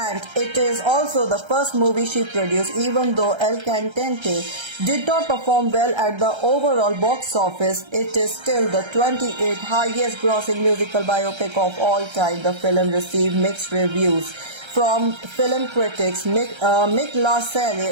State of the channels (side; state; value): left; late; 1.3 ms